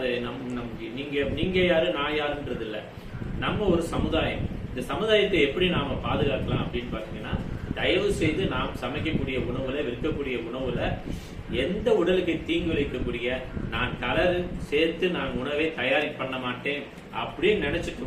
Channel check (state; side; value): identical; both; correlation 1.00